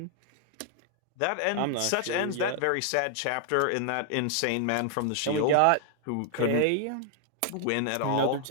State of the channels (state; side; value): different; both; correlation 0.00